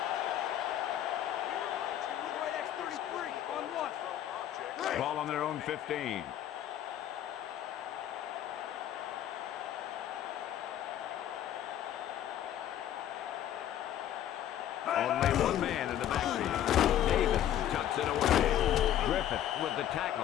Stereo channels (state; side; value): quieter; right; 11.3 dB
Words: Ball on their own 15. Only one man in the backfield. Davis tucks it away. Griffith with the